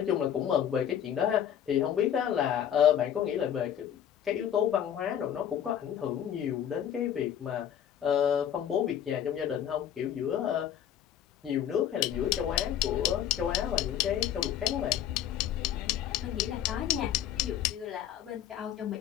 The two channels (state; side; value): quieter; right; 9.9 dB